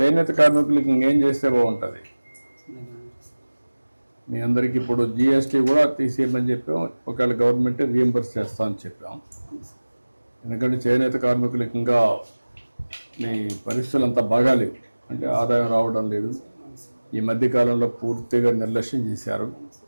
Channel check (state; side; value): inverted; both; correlation -1.00